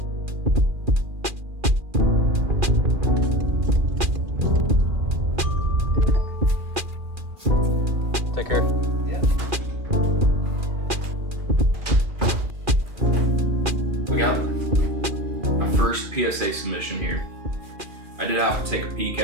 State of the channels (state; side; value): late; left; 2.4 ms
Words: Take care. Yeah. We got my first PSA submission here. I did have to take a peek